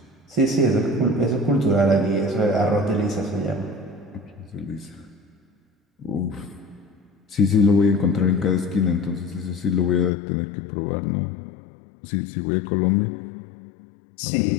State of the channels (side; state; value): right; drops out; at 10.1 s